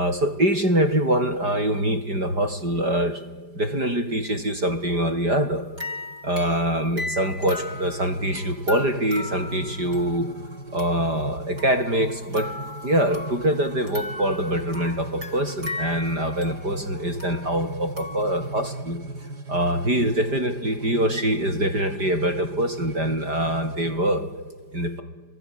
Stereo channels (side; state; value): left; late; 5.0 ms